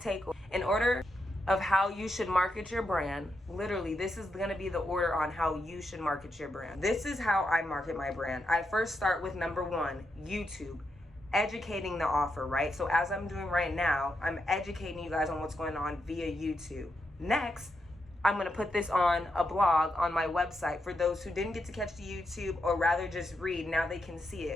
In order of how you should market your brand, literally, this is gonna be the order on how you should market your brand. This is how I market my brand. I first start with number 1, YouTube. Educating the offer, right? So as I'm doing right now, I'm educating you guys on what's going on via YouTube. Next, I'm gonna put this on a blog on my website for those who didn't get to catch the YouTube or rather just read. Now they can see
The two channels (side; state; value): both; normal; correlation 0.83